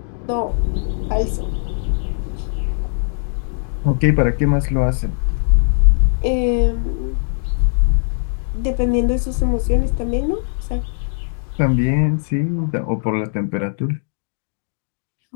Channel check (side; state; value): right; silent; 66 dB below the other